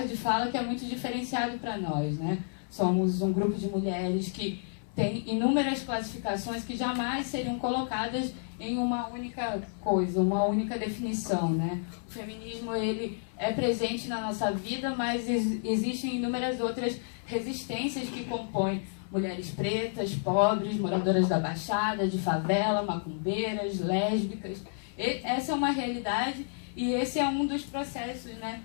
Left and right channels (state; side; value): silent; right; 57 dB below the other